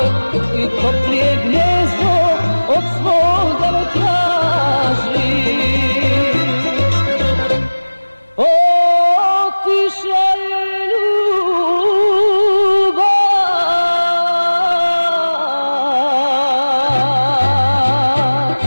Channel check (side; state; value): both; inverted; correlation -1.00